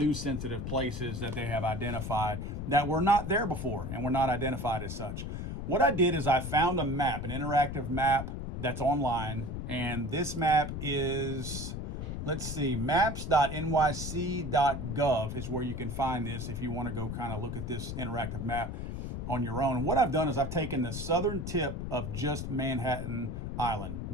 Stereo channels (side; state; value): left; noise; rumble, 5 dB below the sound